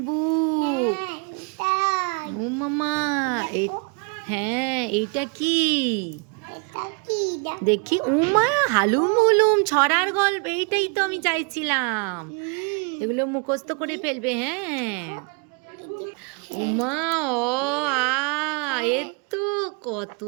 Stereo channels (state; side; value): quieter; left; 34.3 dB